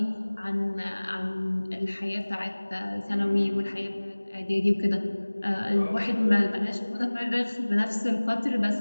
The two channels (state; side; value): inverted; both; correlation -1.00